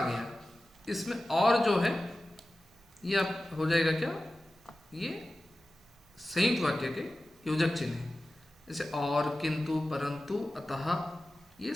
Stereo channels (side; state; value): both; normal; correlation 0.95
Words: इसमें और जो है ये हो जाएगा क्या, ये संयुक्त वाक्य के योजक चिन्ह है। जैसे और, किंतु, परंतु, अतः, ये